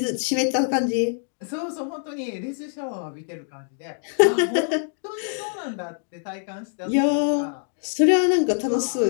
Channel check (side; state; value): right; silent; 61 dB below the other